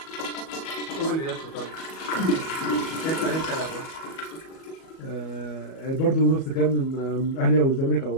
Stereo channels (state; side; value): late; right; 37 ms